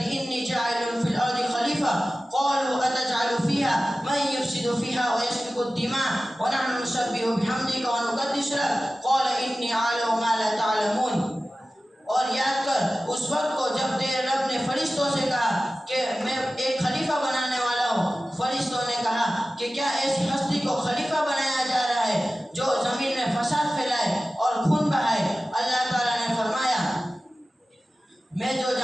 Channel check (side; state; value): both; normal; correlation 0.95